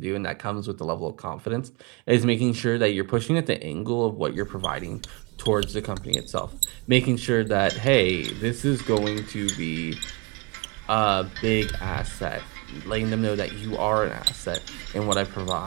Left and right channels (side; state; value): left; quieter; 29.1 dB